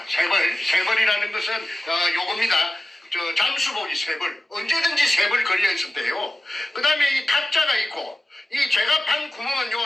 벌이라는 것은 요겁니다. 잠수복이 3벌, 언제든지 3벌 걸려 있었대요. 그 다음에 이 탁자가 있고, 이 제가 판 구멍은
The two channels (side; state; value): both; normal; correlation 0.95